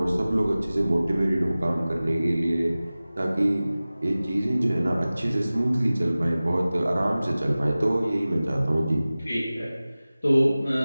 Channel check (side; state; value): both; inverted; correlation -0.97